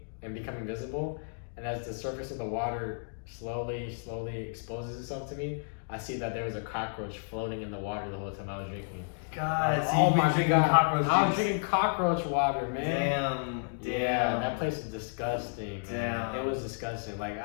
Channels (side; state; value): right; silent; digital silence